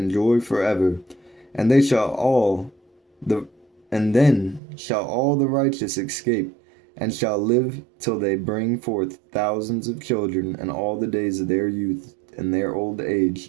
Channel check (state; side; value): drops out; left; at 4.6 s